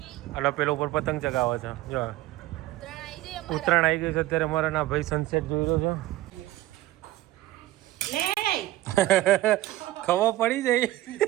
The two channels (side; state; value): left; quieter; 16.2 dB